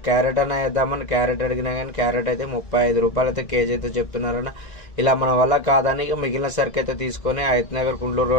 క్యారెట్ అన్న వేద్దామని క్యారెట్ అడిగినా కానీ క్యారెట్ అయితే 35 రూపాయలు అయితే కేజీ అయితే చెప్తున్నారన్న. ఇలా మన వల్ల కాదని మిగిలిన సరికి అయితే తీసుకొని హైత్ నగర్ కుంట్లూరు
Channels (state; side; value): late; right; 1.9 ms